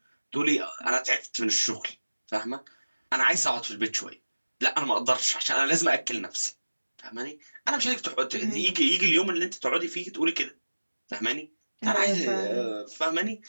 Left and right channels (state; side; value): inverted; both; correlation -1.00